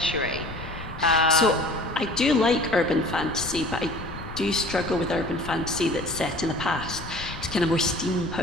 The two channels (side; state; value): left; noise; rumble, 12 dB below the sound